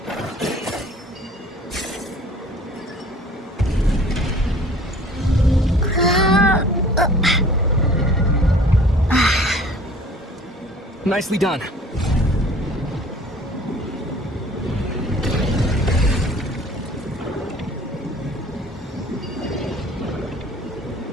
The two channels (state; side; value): normal; both; correlation 0.49